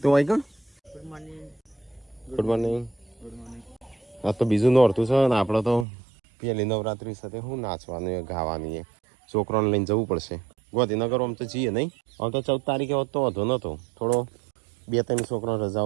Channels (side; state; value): left; drops out; at 5.9 s